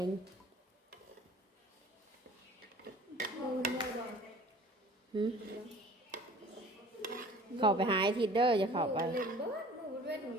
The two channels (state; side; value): normal; both; correlation 0.47